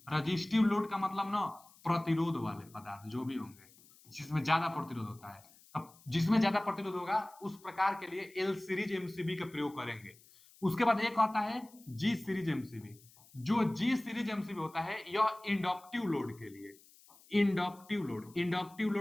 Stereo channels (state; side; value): noise; left; hiss, 25 dB below the sound